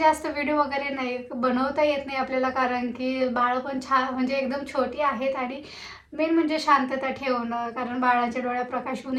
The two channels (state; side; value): identical; both; correlation 1.00